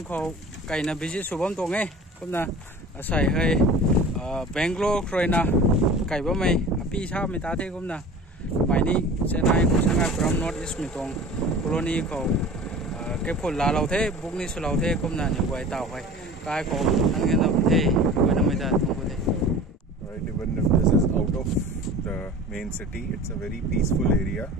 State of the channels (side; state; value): both; normal; correlation 0.39